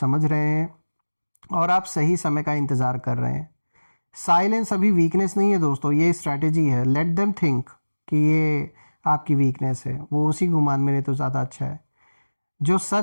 रहे हैं और आप सही समय का इंतज़ार कर रहे हैं। साइलेंस अभी वीकनेस नहीं है दोस्तों, ये स्ट्रैटेजी है। लेट देम थिंक कि ये आपकी वीकनेस है, वो उसी गुमान में रहे तो ज़्यादा अच्छा है। जो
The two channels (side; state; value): both; inverted; correlation -1.00